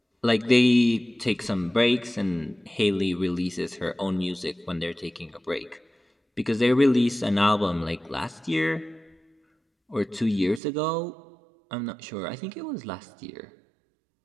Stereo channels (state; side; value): drops out; left; at 10.6 s